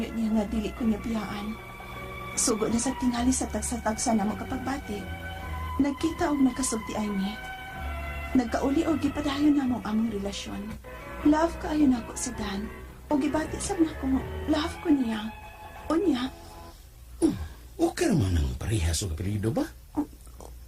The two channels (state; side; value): identical; both; correlation 1.00